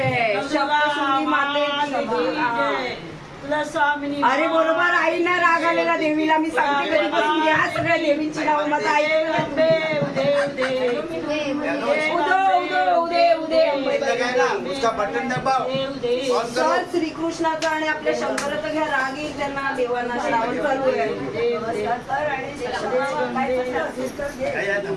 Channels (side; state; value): both; identical; correlation 1.00